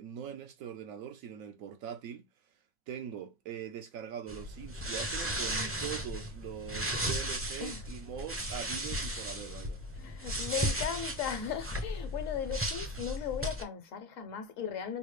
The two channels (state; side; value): normal; both; correlation 0.18